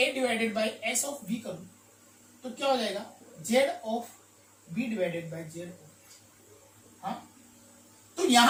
divided by S of B करूं तो क्या हो जाएगा, Z of B divided by Z of. हाँ, तो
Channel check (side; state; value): both; identical; correlation 1.00